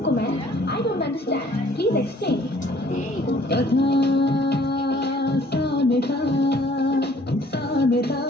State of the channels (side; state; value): both; normal; correlation 0.57